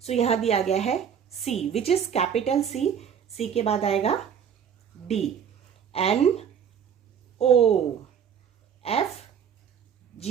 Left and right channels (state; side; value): quieter; left; 7.9 dB